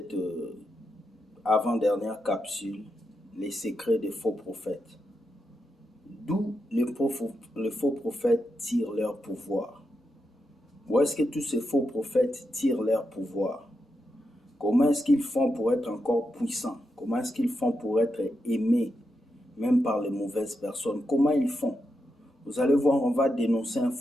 avant-dernière capsule, les secrets des faux prophètes. D'où les faux prophètes tirent leur pouvoir. Où est-ce que tous ces faux prophètes tirent leur pouvoir? Comment est-ce qu'ils font pour être encore puissants? Comment est-ce qu'ils font pour être aimés, même par les mauvaises personnes? Comment ils font? Vous allez voir, on va dénoncer un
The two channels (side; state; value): both; normal; correlation 0.85